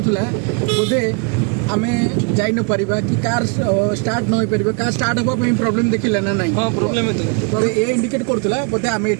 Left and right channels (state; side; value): quieter; left; 36.4 dB